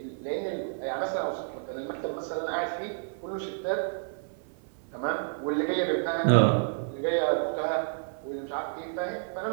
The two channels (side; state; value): left; silent; 58 dB below the other